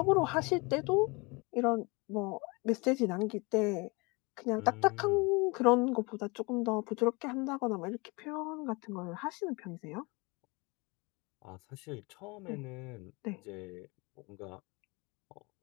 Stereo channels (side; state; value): right; quieter; 27.3 dB